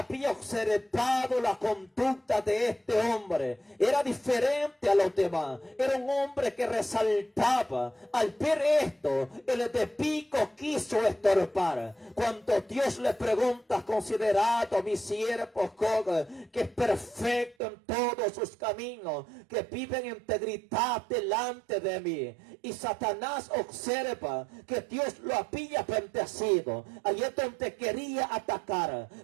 observado la conducta de este hombre. Era diferente a los demás. Era un hombre que resaltaba. Al ver esto, el enemigo quiso estorbar. Cuando Dios le pregunta, considerado mi siervo Job, que es perfecto en todos sus caminos, que vive en integridad delante de mí. Y Satanás observa que Dios lo había bendecido. Allí es donde quería atacar,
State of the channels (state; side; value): drops out; left; at 17.6 s